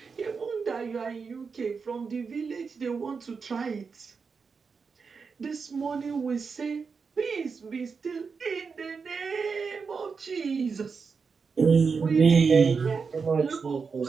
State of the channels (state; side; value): quieter; left; 5.3 dB